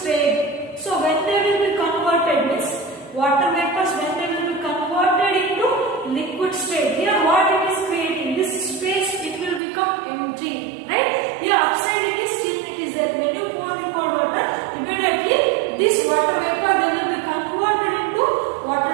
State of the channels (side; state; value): left; drops out; at 9.6 s